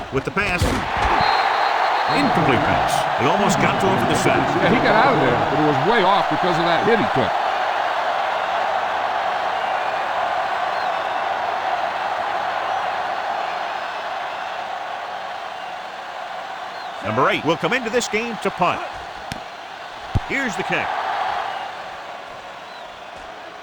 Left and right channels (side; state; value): both; identical; correlation 1.00